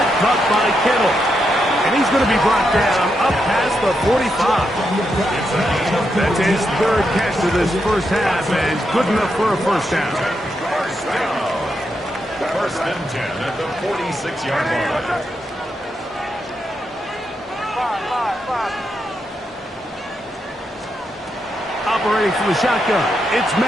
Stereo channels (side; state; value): both; normal; correlation 0.83